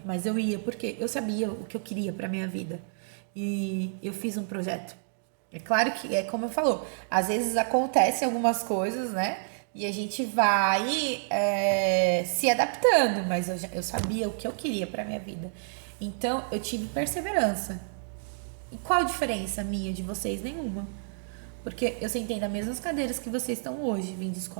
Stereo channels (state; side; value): silent; left; digital silence